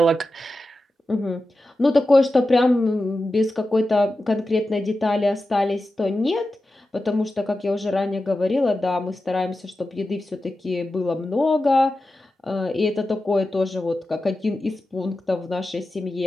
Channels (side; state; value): both; normal; correlation 0.93